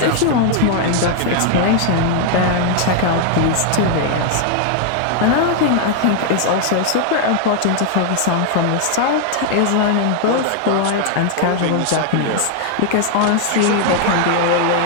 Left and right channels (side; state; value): both; different; correlation 0.00